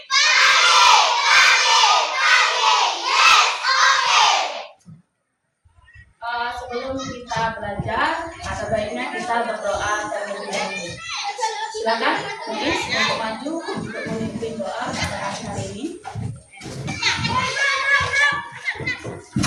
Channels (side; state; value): both; identical; correlation 1.00